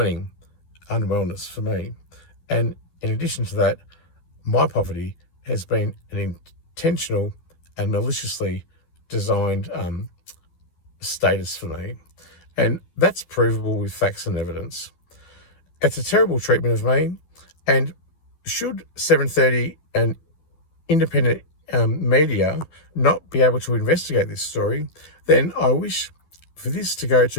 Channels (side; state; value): right; late; 12 ms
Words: unwellness for me. And in addition to that, my poverty has been an intentional and maliciously designed status for me. And that's provable with facts and evidence. It's a terrible treatment of me, and should 7:30 and independent media not be able to investigate this story, then I wish for this to go